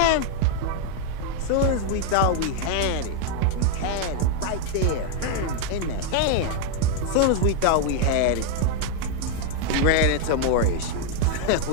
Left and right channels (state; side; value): different; both; correlation 0.00